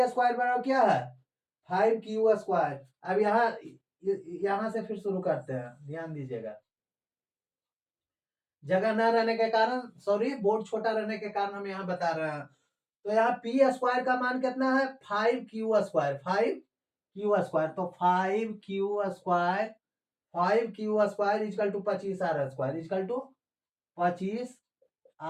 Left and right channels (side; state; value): both; identical; correlation 1.00